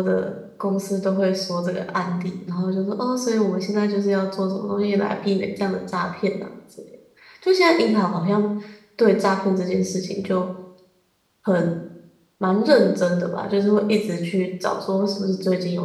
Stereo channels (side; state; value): both; identical; correlation 1.00